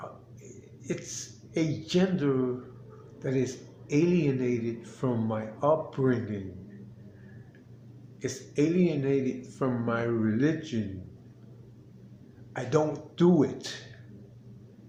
It's a gender that is alienated from my upbringing. It's alienated from my religion. I don't do it.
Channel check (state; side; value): identical; both; correlation 1.00